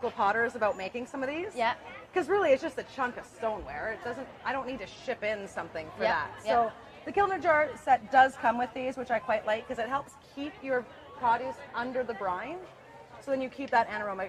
potters about making some of these. Yeah. Because really it's just a chunk of stoneware. I don't need to ship in something for that. So the Kilner jar set does come with these, which I quite like because it helps keep your produce under the brine. So then you keep that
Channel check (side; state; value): both; identical; correlation 1.00